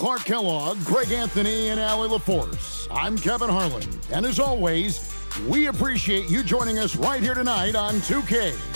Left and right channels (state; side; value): inverted; both; correlation -1.00